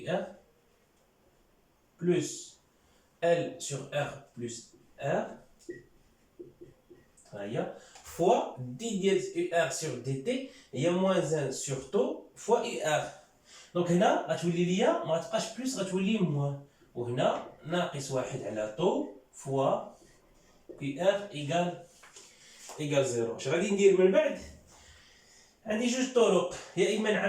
آر بلوس إل سور آر بلوس آر، ها هي فوا دي ديال إي آر سور دي تي هي موان 1 سور تو فوا إي آر. دونك هنا غتولي ليا ما غتبقاش بلوس، غتولي موان، وهنا ناقص 1 على طو فوا كي ار ايكال زيرو. اش غادي ندير من بعد؟ عندي جوج طرق، يا اما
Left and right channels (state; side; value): identical; both; correlation 1.00